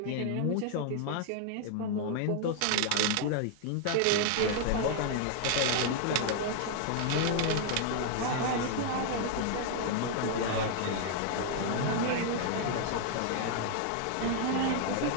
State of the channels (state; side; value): different; both; correlation 0.00